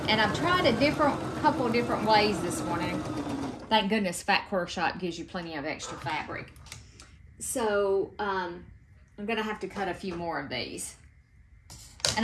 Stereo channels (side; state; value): both; identical; correlation 1.00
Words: and I've tried a couple different ways this morning. Thank goodness Fat Quarter Shop gives you plenty of extra fabric. So I'm gonna have to cut a few more of these.